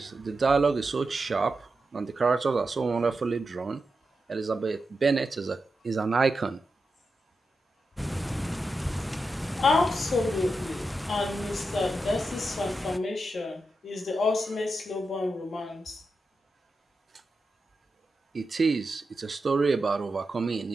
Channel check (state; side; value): normal; both; correlation 0.89